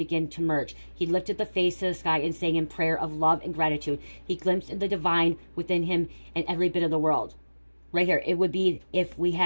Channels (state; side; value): inverted; both; correlation -1.00